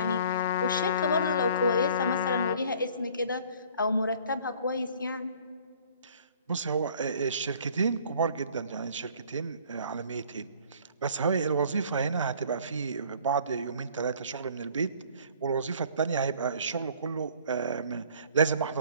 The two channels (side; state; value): both; inverted; correlation -0.53